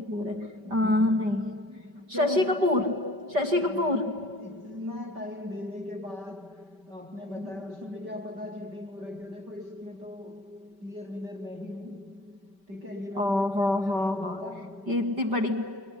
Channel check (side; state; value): left; late; 5.1 ms